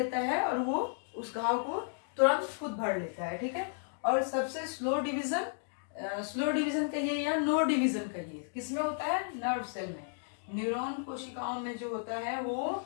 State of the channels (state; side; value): silent; right; digital silence